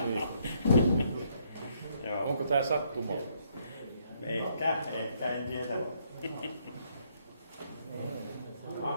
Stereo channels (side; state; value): both; inverted; correlation -0.71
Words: Onko tämä sattuma? Ehkä, en tiedä.